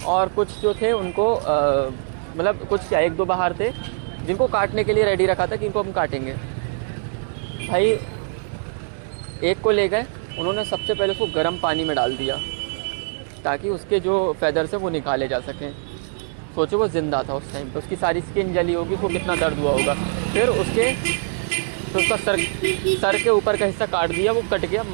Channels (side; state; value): left; silent; 64 dB below the other